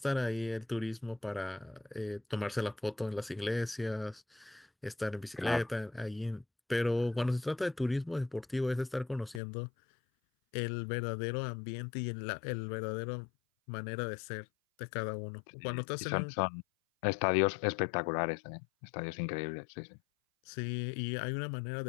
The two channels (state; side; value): drops out; right; at 9.4 s